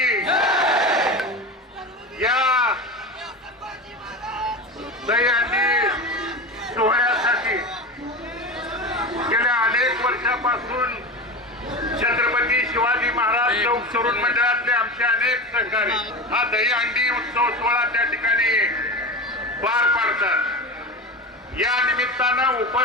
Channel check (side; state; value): both; normal; correlation 0.25